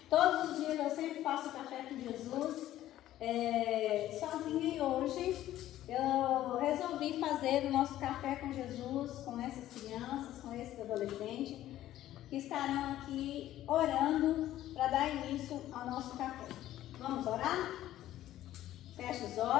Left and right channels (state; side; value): quieter; right; 13.5 dB